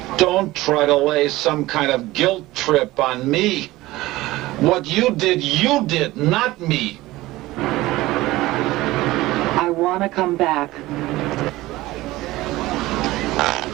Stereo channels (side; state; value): left; quieter; 18.2 dB